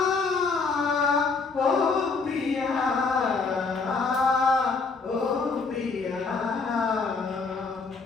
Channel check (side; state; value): right; quieter; 4.4 dB